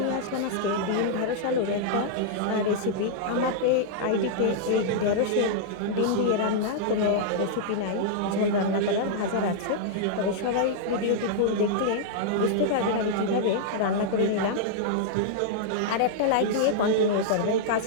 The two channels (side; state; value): both; different; correlation -0.02